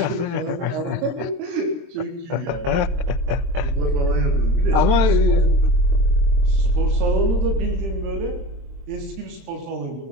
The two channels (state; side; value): late; left; 23 ms